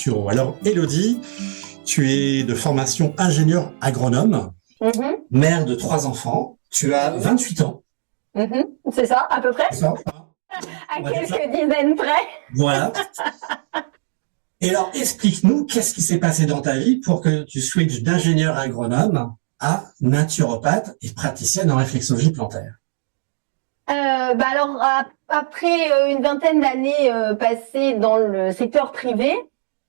Alors Élodie, tu es de formation ingénieur agronome, mère de 3 enfants. Tu as 28 ans. C'est ça, à peu près. C'est ça, à quelques dizaines près. Voilà. Et alors, explique-nous, qu'est-ce qui s'est passé dans ta vie pour que tu switches d'ingénieur agronome à naturopathe et praticienne en réflexologie plantaire? Alors, après une vingtaine d'années passées dans le secteur privé,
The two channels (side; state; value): left; silent; digital silence